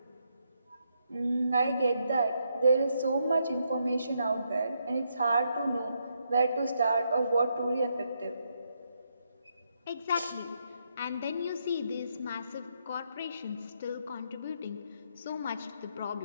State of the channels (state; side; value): inverted; both; correlation -0.78